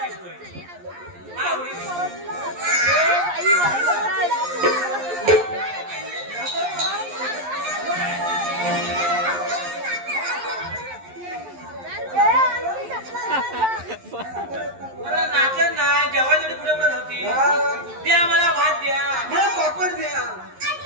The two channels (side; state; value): left; late; 11 ms